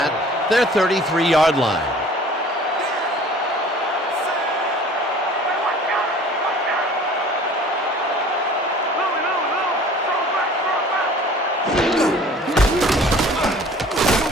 their 33-yard line.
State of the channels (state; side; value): normal; both; correlation 0.48